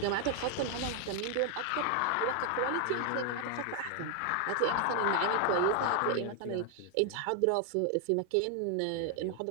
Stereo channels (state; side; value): different; both; correlation 0.00